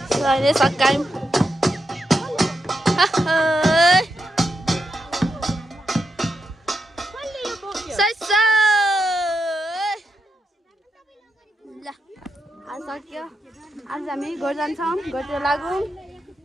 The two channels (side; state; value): both; normal; correlation 0.84